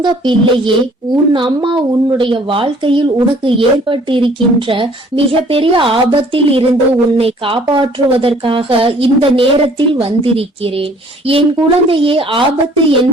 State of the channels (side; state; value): both; normal; correlation 0.56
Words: பிள்ளையே, உன் அம்மா உன்னுடைய வாழ்க்கையில் உனக்கு ஏற்பட்டிருக்கின்ற மிக பெரிய ஆபத்தில் இருந்து உன்னை காப்பாற்றுவதற்காக இந்த நேரத்தில் வந்திருக்கிறேன். என் குழந்தையே, ஆபத்து